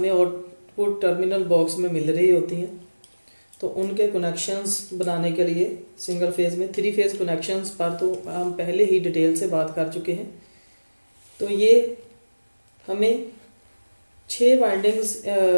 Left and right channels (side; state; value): both; inverted; correlation -1.00